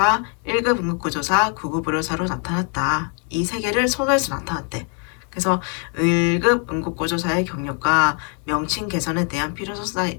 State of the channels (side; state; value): right; quieter; 39.7 dB